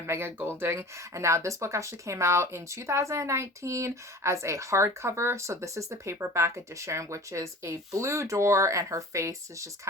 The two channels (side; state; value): both; normal; correlation 0.41